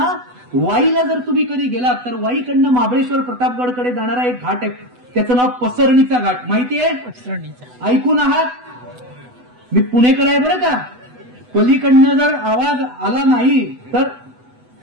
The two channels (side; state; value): left; late; 8.0 ms